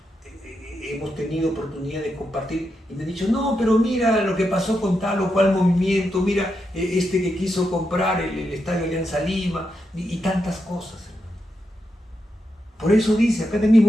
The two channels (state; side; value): normal; both; correlation 0.85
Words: hemos tenido oportunidad de compartir y me han dicho, no, pero mira lo que pasó con tal o cual movimiento, mira este que quiso comprar el Estadio Alianza Lima y tantas cosas, hermano. Por eso dice, acá